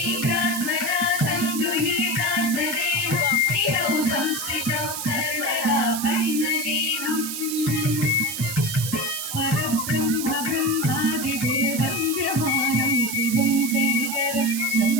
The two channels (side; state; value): right; noise; hiss, 5 dB below the sound